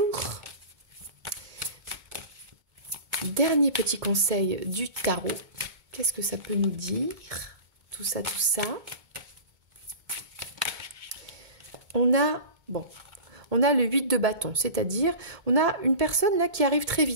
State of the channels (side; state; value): left; late; 2.2 ms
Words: dernier petit conseil du tarot. Qu'est-ce que ça peut nous dire? Tout ça. On a le 8 de bâton, c'est-à-dire on a une personne là qui arrive très